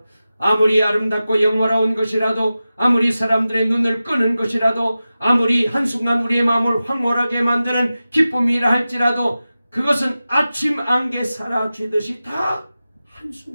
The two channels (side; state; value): both; inverted; correlation -0.94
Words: 아무리 아름답고 영화로운 것이라도, 아무리 사람들의 눈을 끄는 것이라도, 아무리 한순간 우리의 마음을 황홀하게 만드는 기쁨이라 할지라도 그것은 아침 안개 사라지듯이 다